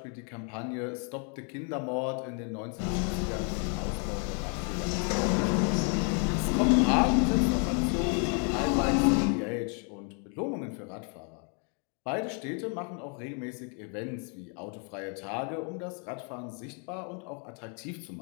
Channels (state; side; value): quieter; right; 39.5 dB